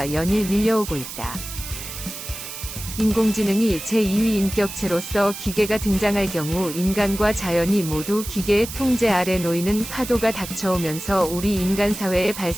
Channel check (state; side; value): noise; right; hiss, 10 dB below the sound